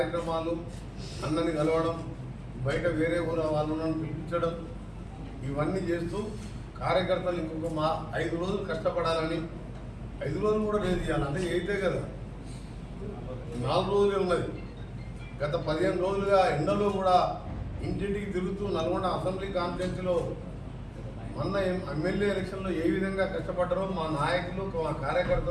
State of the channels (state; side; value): identical; both; correlation 1.00